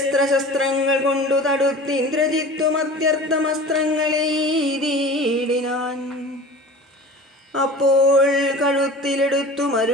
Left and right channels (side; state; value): both; normal; correlation 0.38